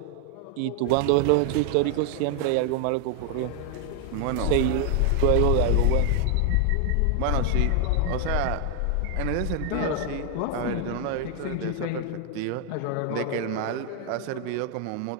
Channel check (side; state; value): both; different; correlation 0.00